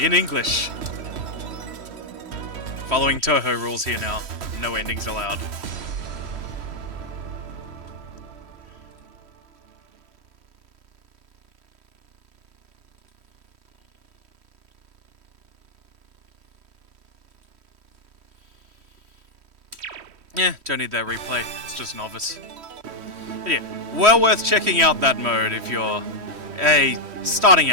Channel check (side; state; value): left; late; 3.1 ms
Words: English. Following Toho rules here now. No endings allowed. Yeah, don't need that replay. It's just novice. But yeah, well worth checking out that mode if you're a starting